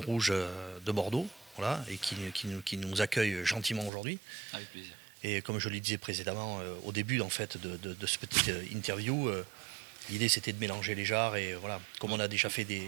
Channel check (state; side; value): drops out; left; at 3.9 s